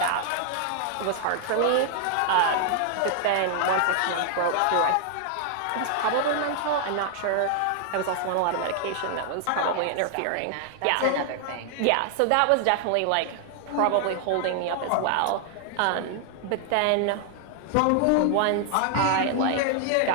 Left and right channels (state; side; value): different; both; correlation 0.00